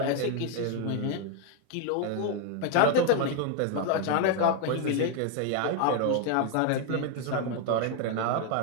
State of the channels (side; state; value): both; different; correlation 0.01